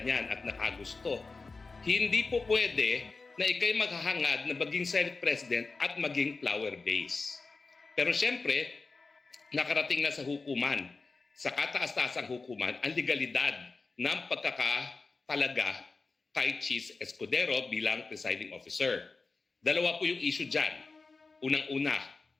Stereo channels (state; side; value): quieter; right; 4.0 dB